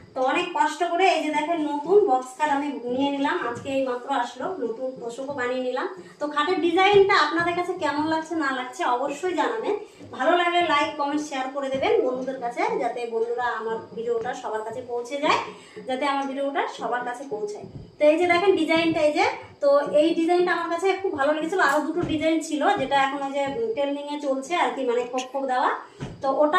তো অনেক কষ্ট করে এই যে দেখেন নতুন বক্স খাট আমি নিয়ে নিলাম, আজকে এই মাত্র আসলো, নতুন তোষকও বানিয়ে নিলাম। তো খাটের ডিজাইনটা আপনাদের কাছে কেমন লাগছে না লাগছে অবশ্যই জানাবেন। ভালো লাগলে লাইক কমেন্ট শেয়ার করে দেবেন বন্ধুদের কাছে, যাতে বন্ধুরা আমার ভিডিওটা সবার কাছে পৌঁছে যায়, যাতে আমার ভিডিওটা সবার কাছে পৌঁছায়। তো এই যে দেখেন ডিজাইনটা, এই যে তো এই ডিজাইনটা আমার কাছে খুব ভালো লেগেছিল। আরো দুটো ডিজাইন ছিল যেটা এখন ওই যে ট্রেন্ডিং এ চলছে আর কি, মানে খোপ খোপ দেওয়া। তো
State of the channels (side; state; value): both; identical; correlation 1.00